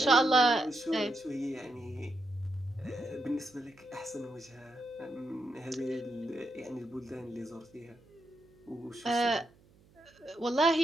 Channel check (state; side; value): noise; right; hum, 29 dB below the sound